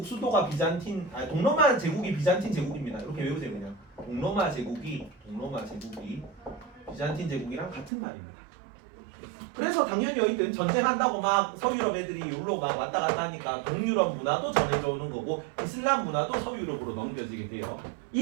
수도가 동로마 제국이 비잔틴 제국입니다. 이렇게 외우세요 그냥. 동로마 제국이 비잔틴 제국이랑 같은 말입니다. 그래서 당연히 여기는 전쟁한다고 막 서유럽 애들이 여기로 막 왔다 갔다 하니까 동유럽 문화도 전해져 오는 거고 이슬람 문화도 서유럽으로 넘겨지게 돼요.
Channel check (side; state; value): left; drops out; at 7.9 s